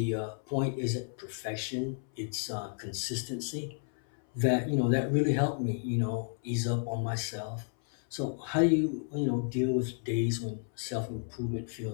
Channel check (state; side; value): silent; right; 56 dB below the other